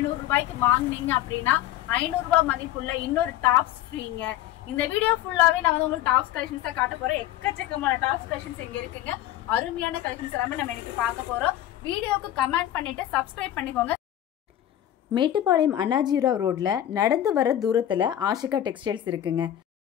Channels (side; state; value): right; quieter; 12.6 dB